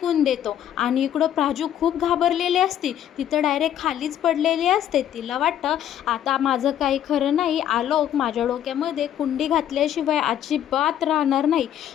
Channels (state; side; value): quieter; right; 10.6 dB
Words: देतो आणि इकडं प्राजू खूप घाबरलेली असते, तिथं डायरेक्ट खालीच पडलेली असते. तिला वाटतं आता माझं काही खरं नाही, आलोक माझ्या डोक्यामध्ये कुंडी घातल्याशिवाय अजिबात राहणार नाही.